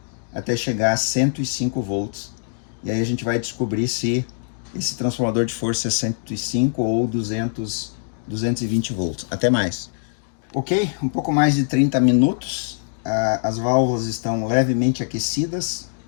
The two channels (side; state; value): right; silent; digital silence